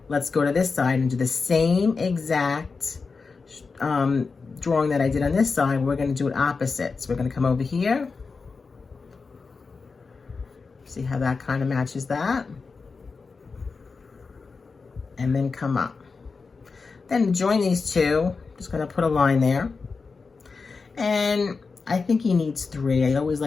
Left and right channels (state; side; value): quieter; right; 4.6 dB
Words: Let's go to this side and do the same exact drawing that I did on this side. We're gonna do it opposite. So we're gonna come over here. See how that kind of matches that? And then come up. Then join these two. Just gonna put a line there. And I think he needs 3. I always